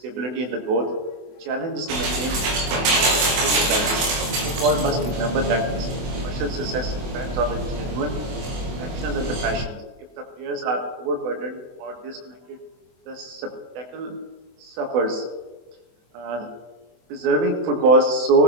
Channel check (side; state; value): left; late; 24 ms